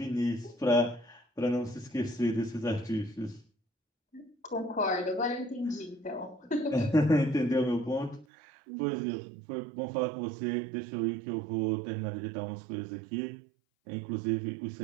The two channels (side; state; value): left; drops out; at 8.2 s